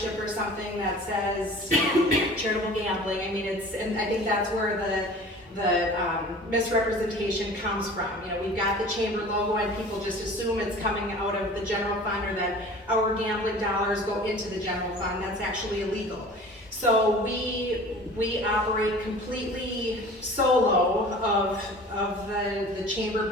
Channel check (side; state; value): both; normal; correlation 0.43